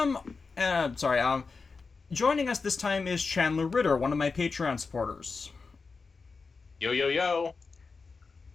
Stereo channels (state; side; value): quieter; right; 4.6 dB